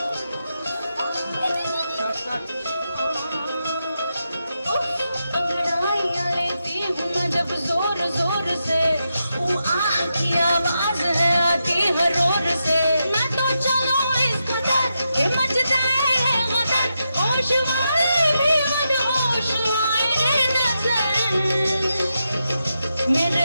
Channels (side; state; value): both; inverted; correlation -0.86